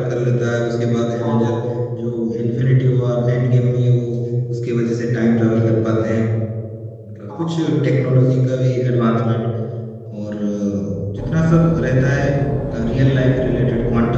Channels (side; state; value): both; identical; correlation 1.00